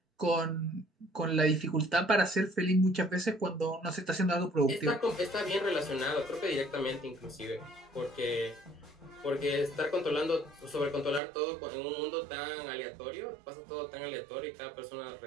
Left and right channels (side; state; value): left; drops out; at 11.2 s